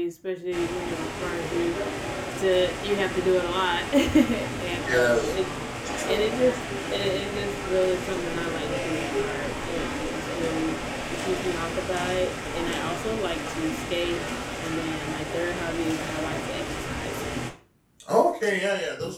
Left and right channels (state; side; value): identical; both; correlation 1.00